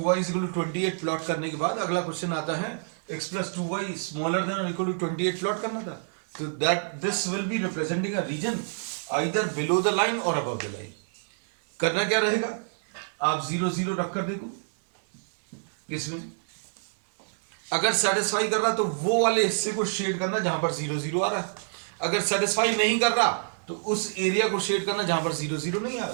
is equal to 28 plot करने के बाद अगला क्वेश्चन आता है x plus 2y smaller than or equal to 28 plot करना था. तो that this will be representing a region either below the line or above the line. करना क्या रहेगा? आप 0 0 रख कर देखो. इसमें अगर सेटिस्फाई कर रहा तो वो वाले हिस्से को शेड करना जहां पर 0 0 आ रहा है. अगर सेटिस्फाई नहीं कर रहा तो उस एरिया को शेड करना जहां पर 0 0 नहीं आ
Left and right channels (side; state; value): left; silent; digital silence